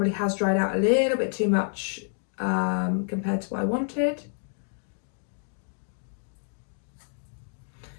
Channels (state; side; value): silent; right; digital silence